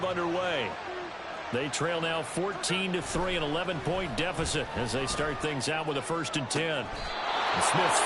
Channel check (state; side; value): identical; both; correlation 1.00